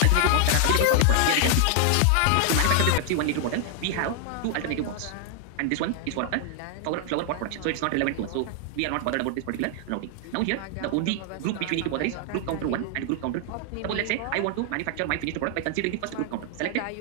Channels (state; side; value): different; both; correlation 0.00